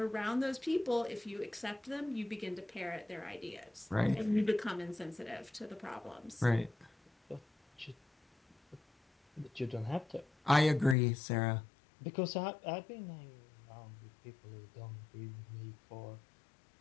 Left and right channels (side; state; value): right; drops out; at 11.0 s